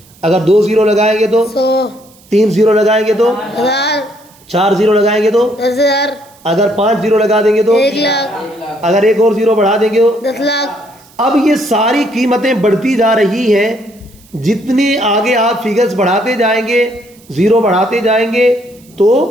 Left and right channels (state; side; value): noise; right; hiss, 28 dB below the sound